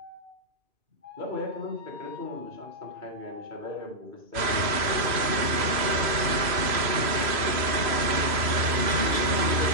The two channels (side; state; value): left; late; 3.0 ms